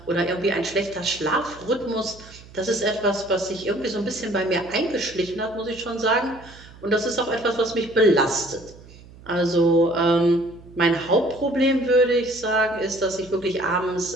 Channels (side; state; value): right; noise; hum, 21 dB below the sound